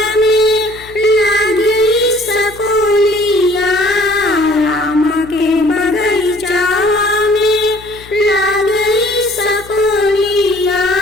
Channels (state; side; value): noise; left; hum, 21 dB below the sound